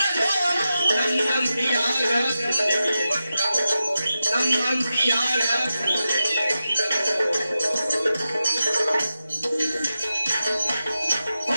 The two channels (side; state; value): both; inverted; correlation -0.91